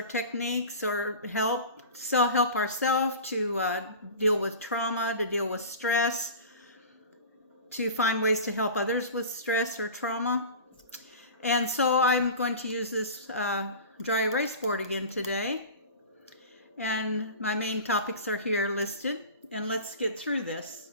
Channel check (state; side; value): inverted; both; correlation -0.36